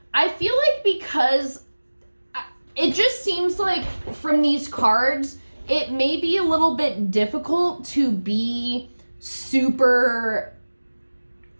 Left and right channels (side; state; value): both; inverted; correlation -1.00